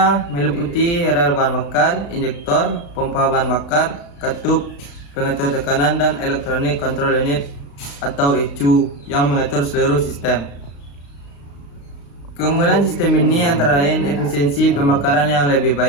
meliputi rel bahan bakar, injektor, pompa bahan bakar, katup, pengatur tekanan, dan electronic control unit atau ECU yang mengatur seluruh sistem. Keunggulan sistem ini antara lain efisiensi pembakaran yang lebih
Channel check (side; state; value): right; late; 35 ms